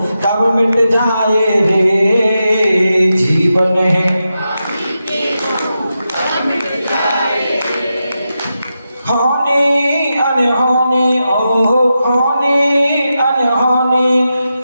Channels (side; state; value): both; inverted; correlation -0.88